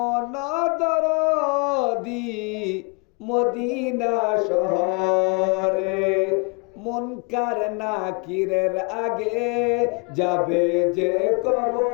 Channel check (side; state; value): right; quieter; 34.2 dB